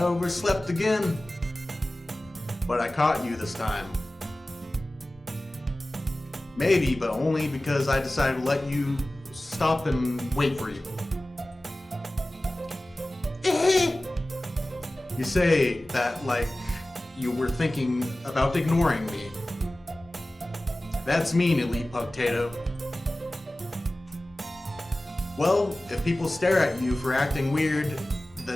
again, but I caught you this time. Maybe, but only because I decided to let you stop and wait for you. You say that like you were thinking about ignoring me. That's mean, Elite Potato. Well, if people stare at you for acting weird,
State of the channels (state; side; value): normal; both; correlation 0.97